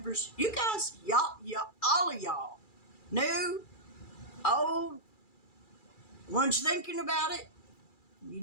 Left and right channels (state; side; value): late; right; 2.3 ms